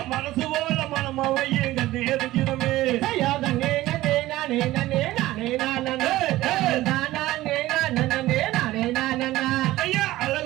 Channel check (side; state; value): left; quieter; 16.5 dB